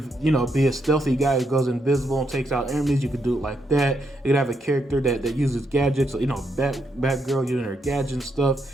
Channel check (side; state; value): both; normal; correlation 0.79